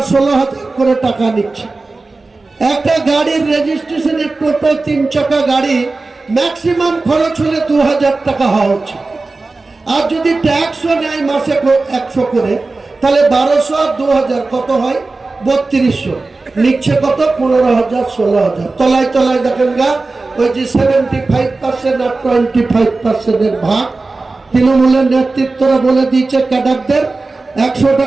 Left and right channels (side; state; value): left; quieter; 3.6 dB